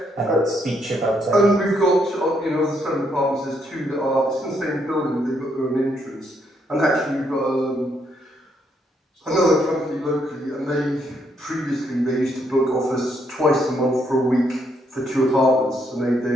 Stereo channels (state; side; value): normal; both; correlation 0.74